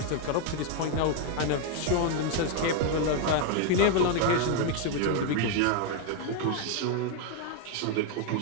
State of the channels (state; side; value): different; both; correlation 0.00